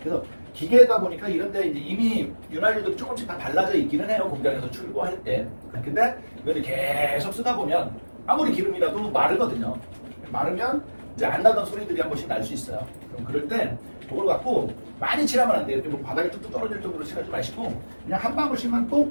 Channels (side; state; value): both; inverted; correlation -1.00